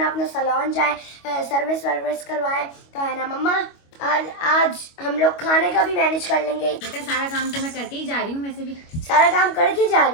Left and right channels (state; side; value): late; right; 25 ms